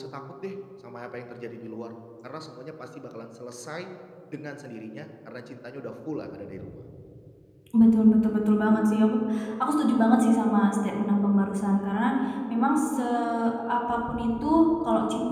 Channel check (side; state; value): both; identical; correlation 1.00